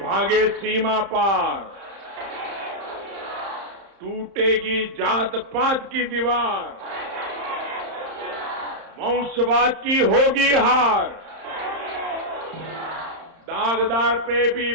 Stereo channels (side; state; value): left; late; 31 ms